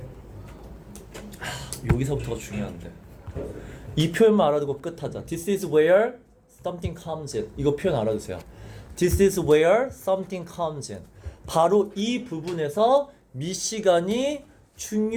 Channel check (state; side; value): identical; both; correlation 1.00